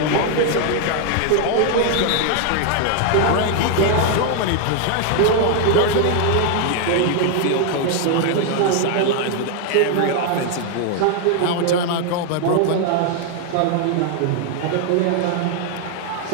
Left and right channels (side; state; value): both; different; correlation 0.00